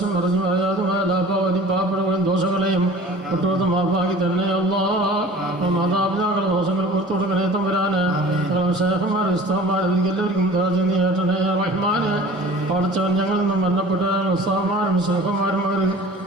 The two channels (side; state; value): both; normal; correlation 0.44